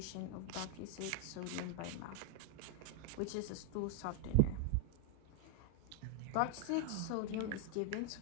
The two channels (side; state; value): both; different; correlation 0.01